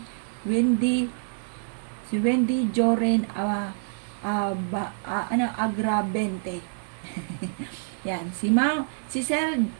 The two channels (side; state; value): left; silent; digital silence